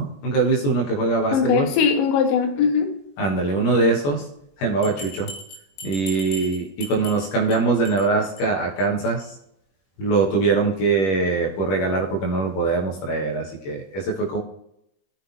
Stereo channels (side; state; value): right; late; 21 ms